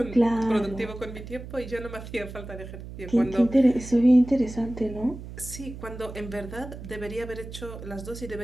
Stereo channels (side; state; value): right; noise; hum, 12 dB below the sound